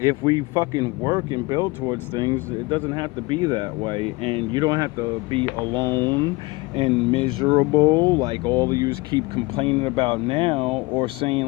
we fucking work and build towards things, it doesn't have to be that way. And you don't have to be alone and miserable like all of you keep complaining about now, or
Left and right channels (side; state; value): right; quieter; 23.8 dB